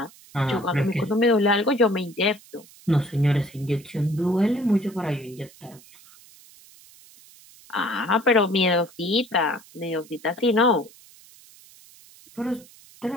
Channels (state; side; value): noise; right; hiss, 24 dB below the sound